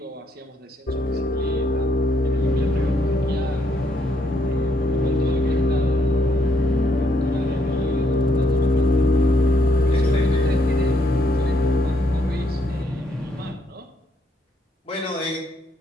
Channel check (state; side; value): normal; both; correlation 0.73